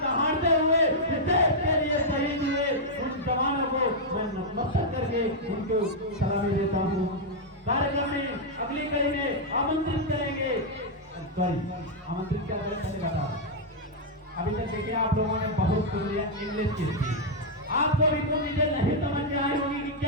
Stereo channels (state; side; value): normal; both; correlation -0.04